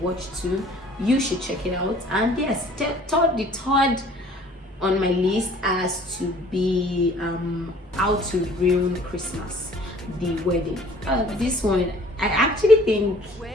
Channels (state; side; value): normal; both; correlation 0.53